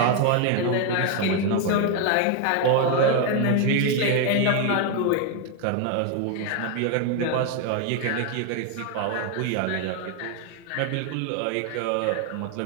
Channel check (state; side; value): different; both; correlation 0.01